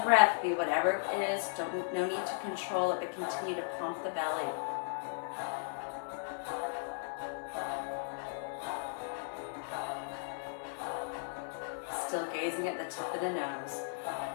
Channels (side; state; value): right; silent; digital silence